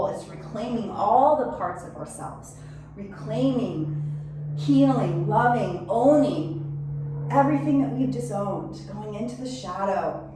It's reclaiming all the parts of ourselves, reclaiming, healing, loving, owning everything that we've disowned, going into the shadow.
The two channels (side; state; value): both; identical; correlation 1.00